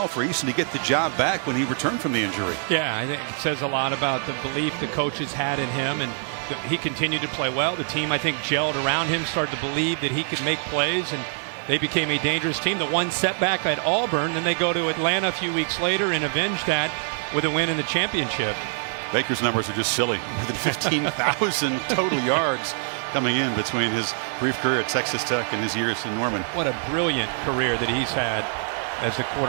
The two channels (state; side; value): silent; left; digital silence